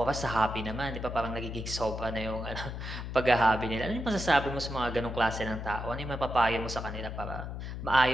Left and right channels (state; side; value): noise; left; hum, 6 dB below the sound